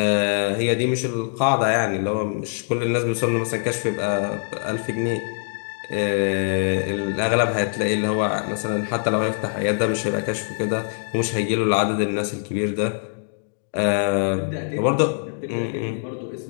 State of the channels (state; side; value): silent; right; digital silence